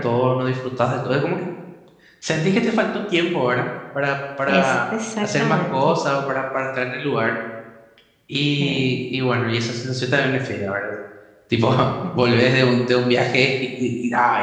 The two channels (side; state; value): both; identical; correlation 1.00